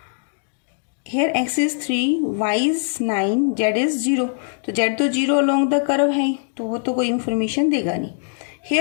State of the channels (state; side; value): silent; right; digital silence